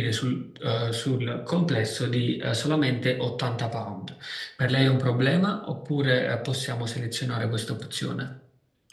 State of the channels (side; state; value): both; identical; correlation 1.00